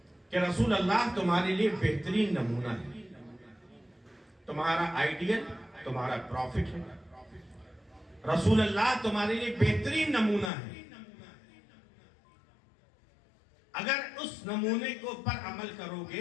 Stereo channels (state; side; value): drops out; right; at 10.5 s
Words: کہ رسول اللہ تمہارے لیے بہترین نمونہ ہے تمہارا آئیڈیل تمہارا پروفٹ ہے رسول اللہ تمہارے لیے بہترین نمونہ ہے اگر اس نمونے کو پر عمل کرو